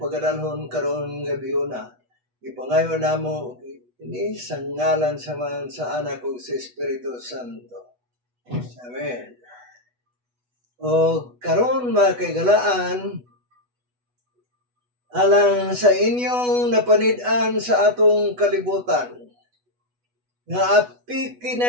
pagadalhon karon gabi una. Ipangayo namo ini sa ngalan sa anak ug sa Espiritu Santo. Amen. O karon mga kaigalaan, alang sa inyong napanid-an sa atong kalibutan, nga api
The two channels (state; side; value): late; left; 8.1 ms